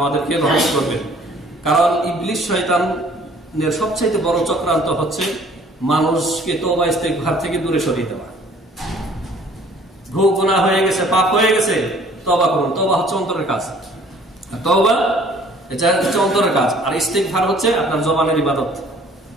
রহমত করবেন। কারণ ইবলিস শয়তানের সবচেয়ে বড় চক্রান্ত হচ্ছে মানুষকে তওবা ইস্তিগফার থেকে দূরে সরিয়ে দেওয়া। ভুল গুনাহ হয়ে গেছে, পাপ হয়ে গেছে, তওবা করুন। তওবা হচ্ছে অন্তরের কাজ, তওবা এটা হচ্ছে অন্তরের কাজ, আর ইস্তিগফার হচ্ছে আপনার জবানের ইবাদত।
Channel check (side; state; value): both; normal; correlation 0.55